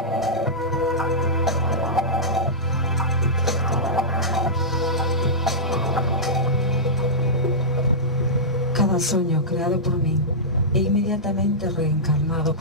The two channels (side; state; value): both; normal; correlation -0.13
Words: Cada soño creado por min é inmediatamente reencarnado